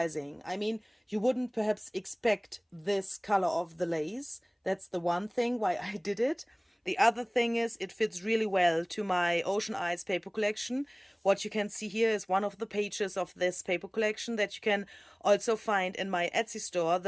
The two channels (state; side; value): identical; both; correlation 1.00